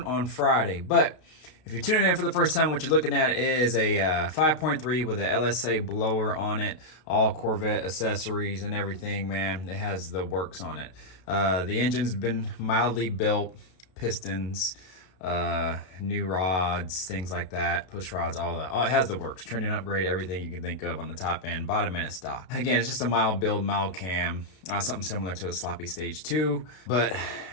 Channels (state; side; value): late; right; 33 ms